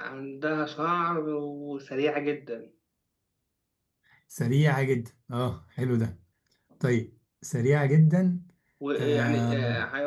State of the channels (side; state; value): both; identical; correlation 1.00